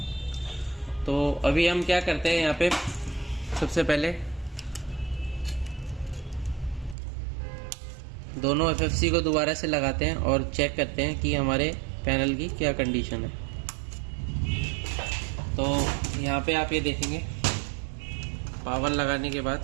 तो अभी हम क्या करते हैं यहाँ पे, सबसे पहले दोनों एफएफसी को दोबारा से लगाते हैं और चेक करते हैं कि हमारे पैनल की क्या कंडीशन है। तो यहाँ पे आप ये देखेंगे, पावर लगाने के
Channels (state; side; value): drops out; left; at 7.0 s